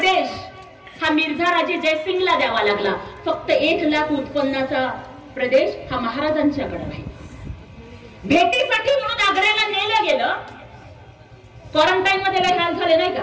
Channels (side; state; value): both; identical; correlation 1.00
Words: हा मिर्झाराजे जयसिंगला द्यावा लागला, फक्त 1 लाख उत्पन्नाचा प्रदेश हा महाराजांच्याकडे आहे. भेटीसाठी म्हणून आग्र्याला नेलं गेलं. क्वारंटाईन मध्ये काही हाल झाले नाही